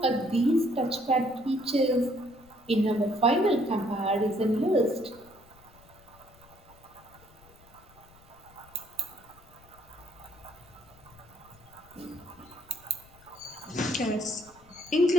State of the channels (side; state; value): left; noise; rumble, 25 dB below the sound